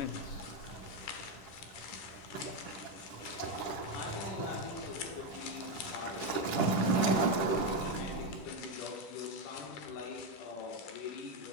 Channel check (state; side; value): late; right; 10 ms